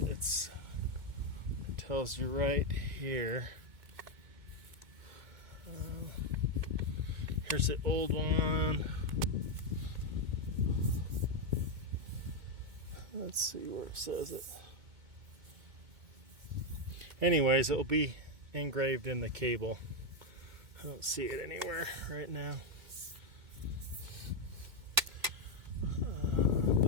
tells you right here. Here's the old one. Let's see where it says it. Anyways, it will be engraved in the cable. I don't see it anywhere right now.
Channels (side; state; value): left; late; 2.2 ms